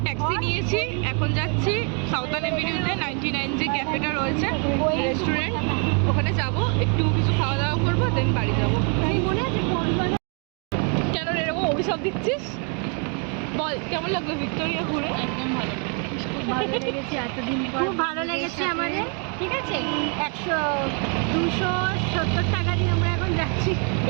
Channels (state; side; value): quieter; left; 38.5 dB